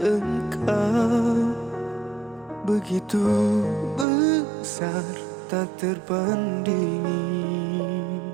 engkau begitu besar, tak terbandingi.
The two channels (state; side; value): drops out; left; at 4.0 s